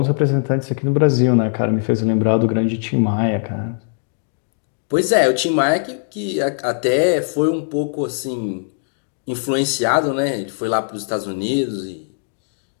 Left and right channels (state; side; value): silent; right; digital silence